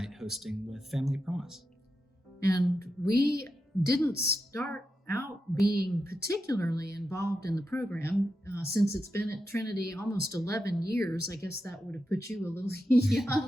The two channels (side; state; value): both; normal; correlation 0.88